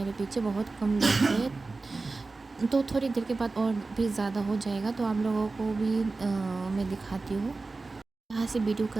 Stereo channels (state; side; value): quieter; left; 3.7 dB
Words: पीछे बहुत कम लोग है। तो थोड़ी देर के बाद और भी ज़्यादा हो जाएगा, तो आप लोगों को भी मैं दिखाती हूँ। यहाँ से वीडियो